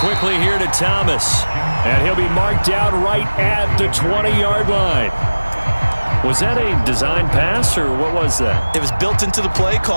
here to Thomas. And he'll be marked out right at the 20-yard line. Was that a design pass, or what was that? It was built into the play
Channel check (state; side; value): inverted; both; correlation -1.00